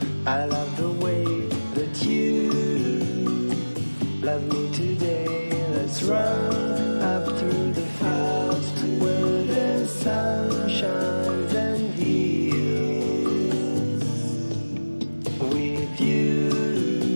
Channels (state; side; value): inverted; both; correlation -1.00